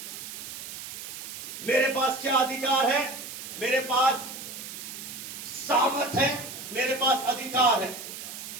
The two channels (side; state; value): right; noise; hiss, 9 dB below the sound